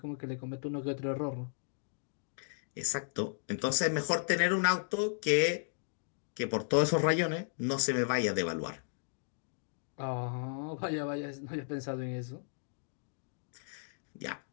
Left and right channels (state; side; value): silent; right; digital silence